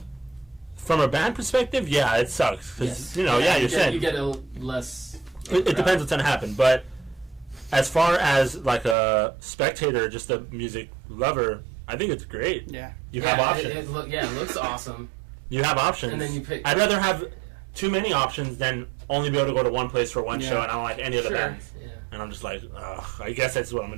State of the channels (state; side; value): drops out; left; at 9.0 s